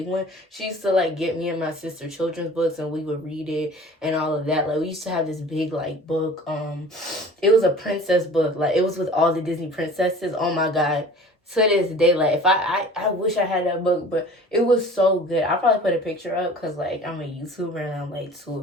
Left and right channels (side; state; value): both; normal; correlation 0.44